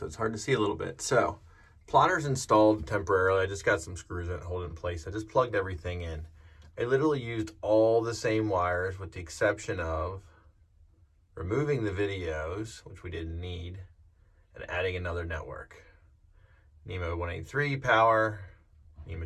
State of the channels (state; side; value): identical; both; correlation 1.00